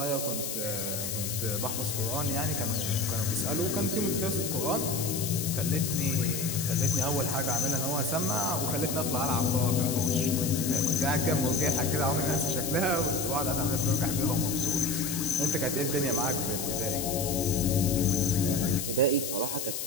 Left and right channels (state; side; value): noise; left; hiss, 4 dB below the sound